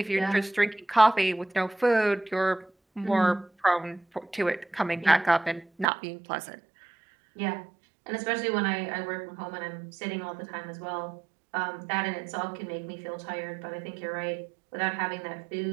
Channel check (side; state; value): left; drops out; at 5.9 s